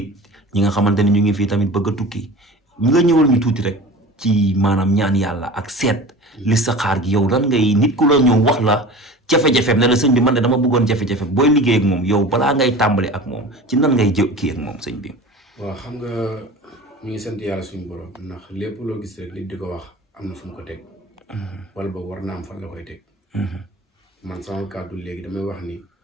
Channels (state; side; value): normal; both; correlation 0.37